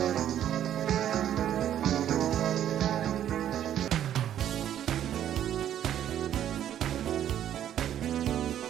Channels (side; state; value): left; quieter; 10.8 dB